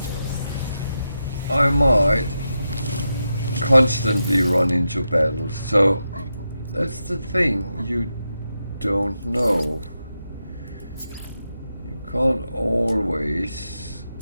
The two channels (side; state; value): both; inverted; correlation -0.87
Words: I might constantly run into battles. So that's the thing, you don't know. You can't always